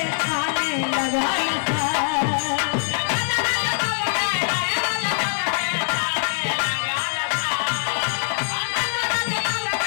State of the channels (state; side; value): silent; right; 63 dB below the other